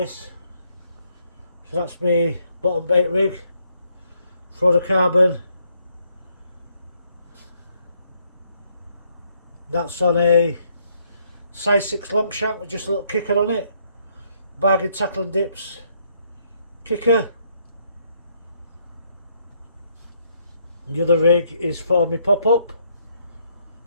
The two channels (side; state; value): both; inverted; correlation -0.72